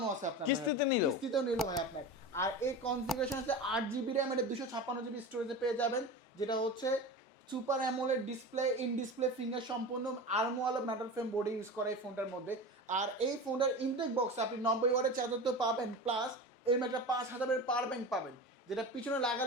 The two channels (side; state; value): both; normal; correlation 0.29